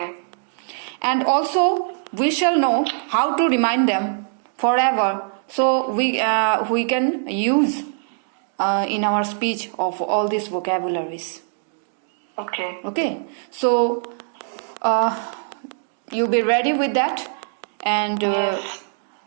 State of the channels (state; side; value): silent; left; digital silence